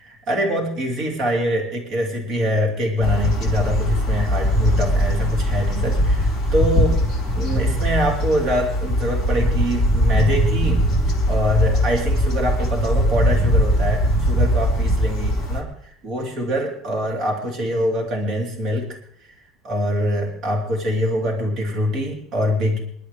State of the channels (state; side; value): normal; both; correlation 0.58